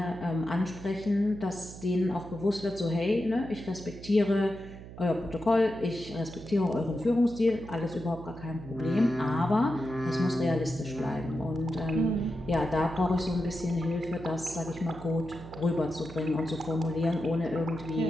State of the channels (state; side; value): noise; right; hum, 14 dB below the sound